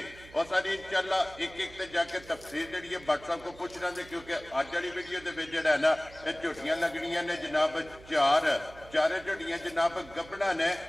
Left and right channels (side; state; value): right; noise; hum, 20 dB below the sound